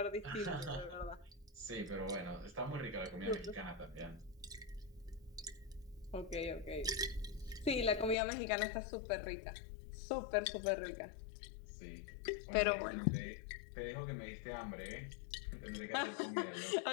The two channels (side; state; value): right; drops out; at 8.2 s